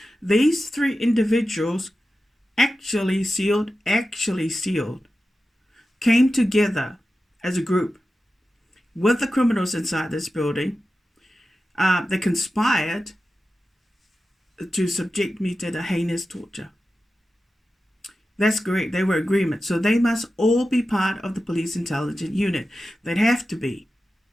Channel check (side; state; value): both; normal; correlation 0.93